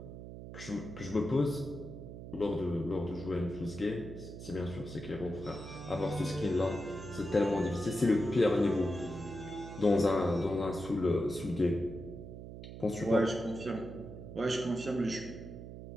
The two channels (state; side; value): noise; right; hum, 11 dB below the sound